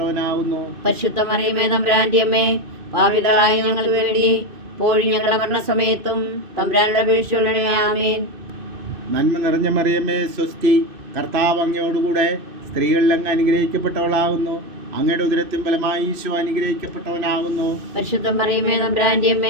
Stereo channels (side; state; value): left; late; 2.6 ms